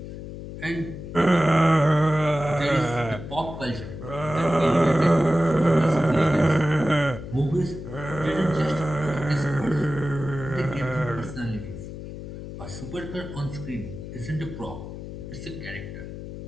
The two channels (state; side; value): noise; left; hum, 10 dB below the sound